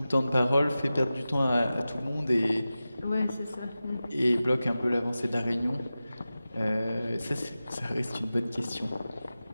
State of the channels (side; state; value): both; inverted; correlation -0.95